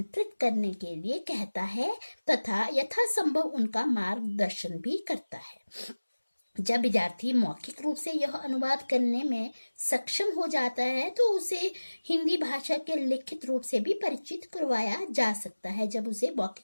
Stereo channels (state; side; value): inverted; both; correlation -1.00